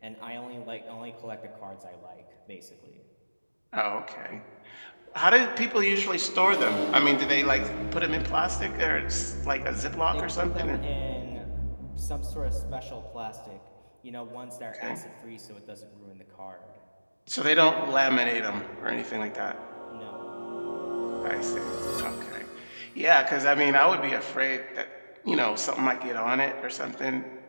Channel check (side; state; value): both; inverted; correlation -1.00